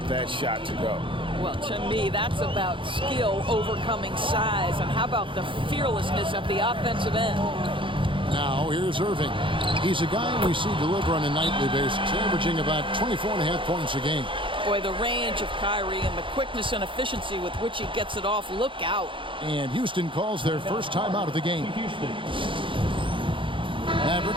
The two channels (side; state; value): left; late; 0.25 ms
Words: that shot to go. Well, to me, that's about skill overcoming size. And how about the fearlessness at the offensive end? Now, here's Irving. He's a guy we see deliver on a nightly basis, averaging about 24.5 points a game. Boy, the range of Kyrie and the quickness and efficiency with which he gets it off, look out. And Houston calls their first time out of the game.